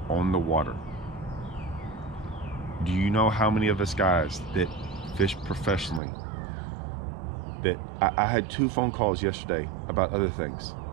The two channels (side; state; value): left; drops out; at 6.0 s